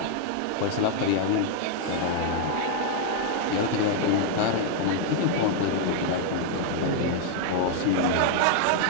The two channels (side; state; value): both; different; correlation 0.00